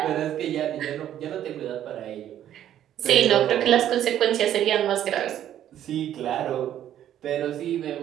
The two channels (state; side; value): quieter; left; 11.2 dB